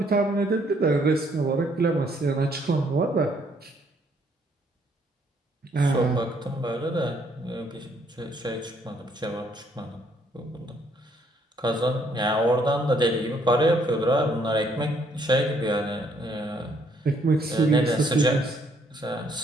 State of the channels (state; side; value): normal; both; correlation 0.67